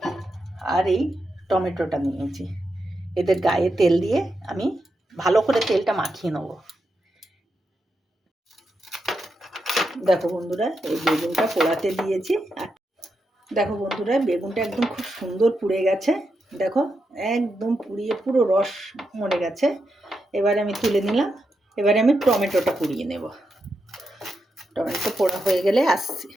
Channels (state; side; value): normal; both; correlation 0.85